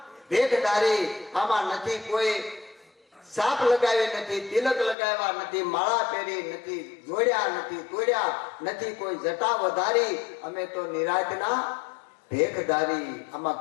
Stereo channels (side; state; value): right; drops out; at 5.0 s